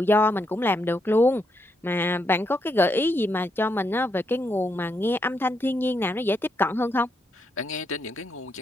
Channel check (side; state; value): both; normal; correlation 0.79